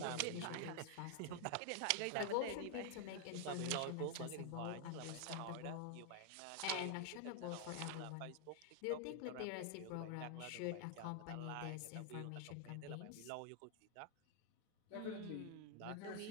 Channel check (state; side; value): different; both; correlation 0.00